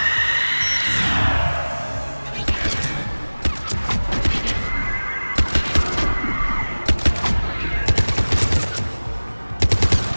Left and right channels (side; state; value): both; inverted; correlation -1.00